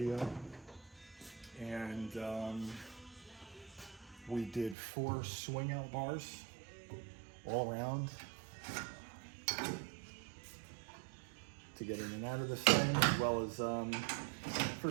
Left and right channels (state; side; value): drops out; left; at 4.8 s